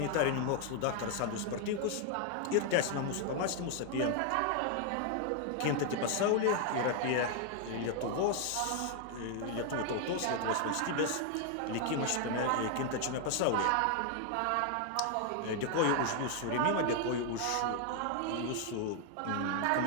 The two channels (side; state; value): both; different; correlation 0.00